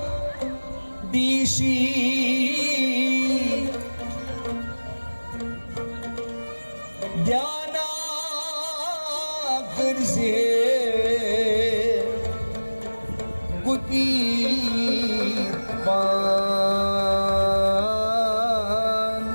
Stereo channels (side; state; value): both; inverted; correlation -1.00